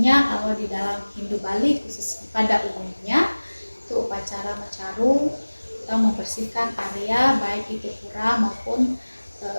kalau di dalam Hindu Bali khusus pada umumnya itu upacara mencaru atau membersihkan area baik itu pura maupun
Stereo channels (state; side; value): inverted; both; correlation -1.00